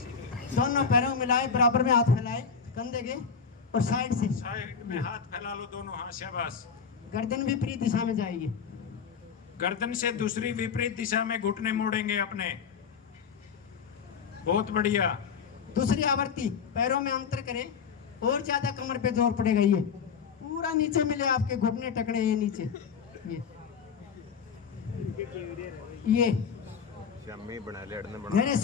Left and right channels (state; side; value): quieter; right; 6.3 dB